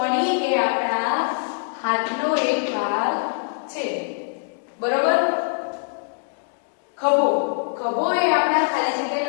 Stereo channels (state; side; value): silent; right; digital silence